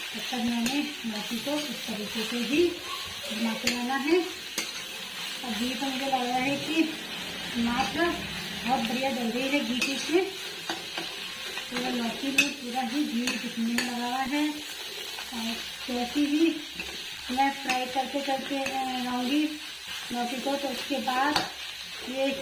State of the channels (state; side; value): identical; both; correlation 1.00